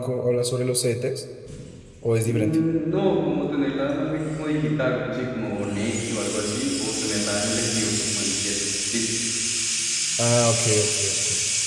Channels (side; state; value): both; identical; correlation 1.00